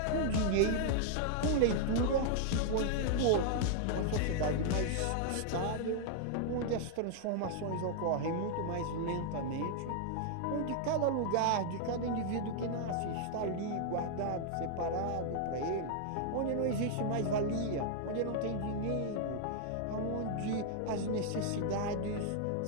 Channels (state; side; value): different; both; correlation 0.00